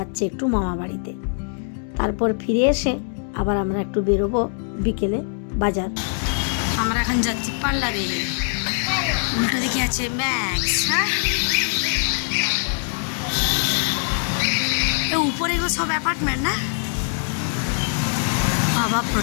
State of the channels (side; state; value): right; silent; 58 dB below the other